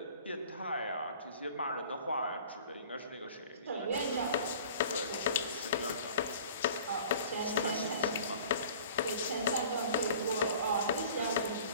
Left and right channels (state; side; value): inverted; both; correlation -0.47